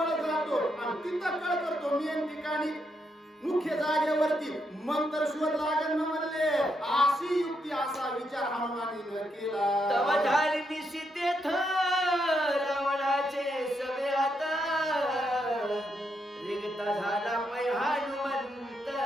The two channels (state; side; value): normal; both; correlation 0.79